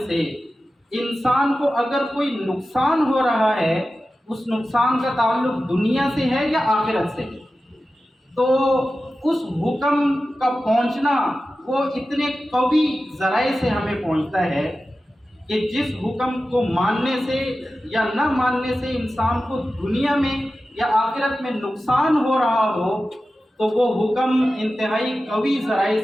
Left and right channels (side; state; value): both; normal; correlation 0.94